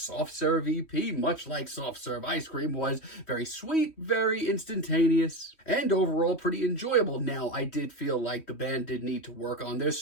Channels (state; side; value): late; right; 3.1 ms